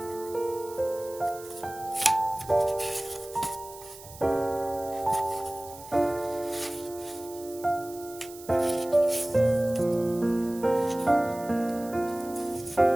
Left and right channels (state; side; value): noise; right; hiss, 17 dB below the sound